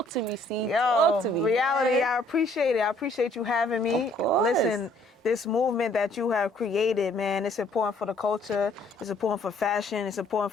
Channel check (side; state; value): both; normal; correlation 0.63